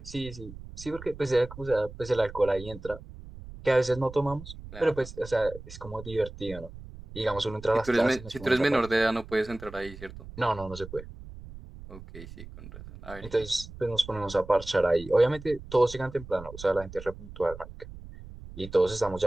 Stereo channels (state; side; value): noise; right; rumble, 15 dB below the sound